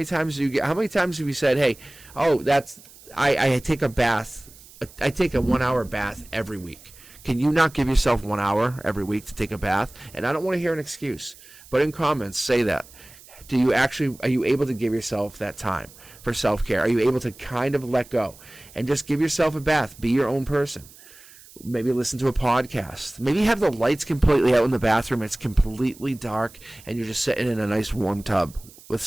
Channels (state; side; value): noise; right; hiss, 22 dB below the sound